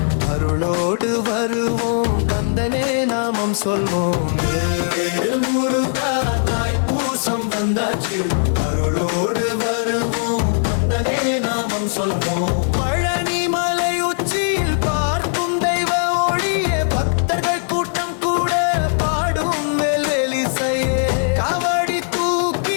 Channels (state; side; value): silent; right; digital silence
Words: அருளோடு வருவோம், கந்தனே நாமம் சொல்வோம். வேல் முருகா தாய்ப்பூசம் வந்தாச்சு, அருளோடு வருவோம், கந்தனே நாமம் சொல்வோம். பழனி மலை உச்சியில் பார்க்கும் தெய்வ ஒளியே, பக்தர்கள் கூட்டம் கூட பாடும் வேல்வேலிசையே. காவடி